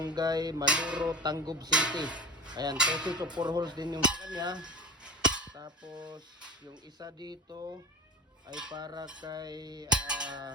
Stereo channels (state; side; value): normal; both; correlation 0.35